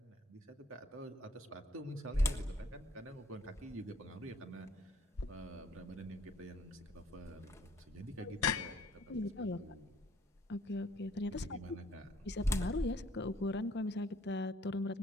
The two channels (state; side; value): normal; both; correlation 0.61